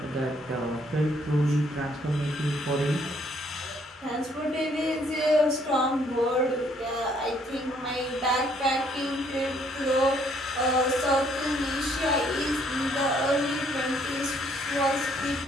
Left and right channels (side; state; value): both; normal; correlation 0.66